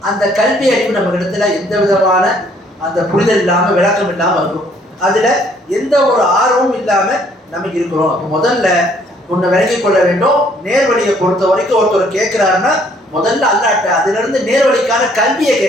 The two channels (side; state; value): both; normal; correlation 0.63